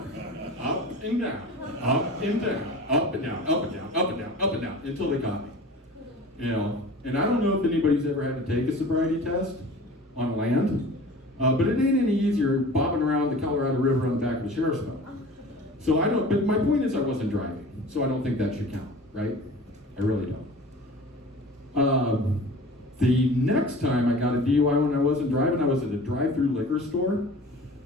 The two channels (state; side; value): normal; both; correlation 0.40